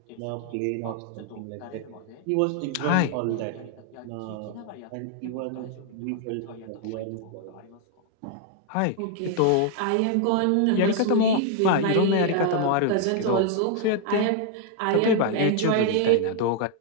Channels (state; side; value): different; both; correlation 0.00